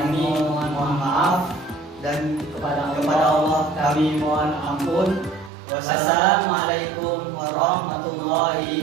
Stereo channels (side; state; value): left; drops out; at 5.5 s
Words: mohon maaf, dan kepada Allah kami mohon ampun. Wassalamualaikum